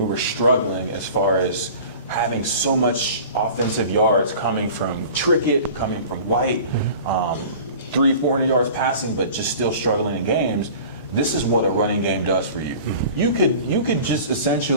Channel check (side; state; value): both; inverted; correlation -0.42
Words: were struggling as far as having so much offensive yards coming from Trickett, coming from White, 300-400 yards passing, but just still struggling in games. This is what a running game does for you. You could just